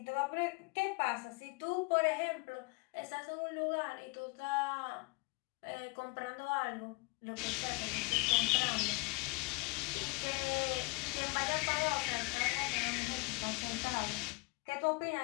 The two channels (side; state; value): right; quieter; 28.8 dB